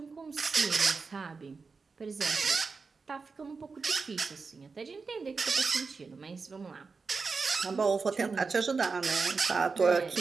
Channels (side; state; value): left; quieter; 4.7 dB